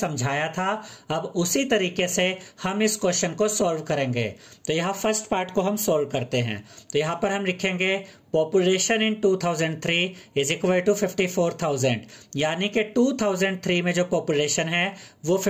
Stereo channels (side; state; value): both; identical; correlation 1.00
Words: था। अब उसी तरीके से हम इस क्वेश्चन को सॉल्व करेंगे। तो यहाँ फर्स्ट पार्ट को हम सॉल्व करते हैं। तो यहाँ पर हम लिखेंगे population in 2003 is equal to 54,000, यानी कि 2003 में जो पॉपुलेशन है वो